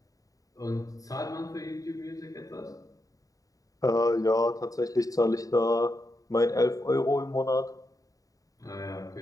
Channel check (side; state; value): right; late; 0.17 ms